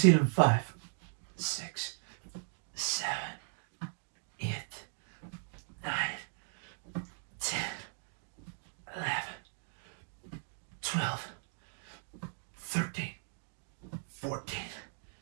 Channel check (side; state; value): left; silent; digital silence